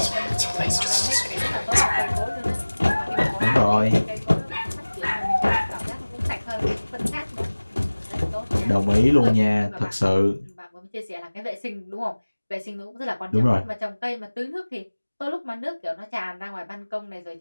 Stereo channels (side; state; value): both; inverted; correlation -1.00